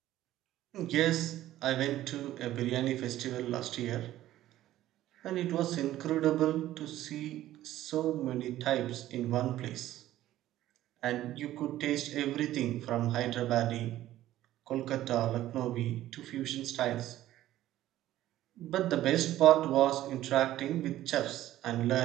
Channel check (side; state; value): left; quieter; 14.0 dB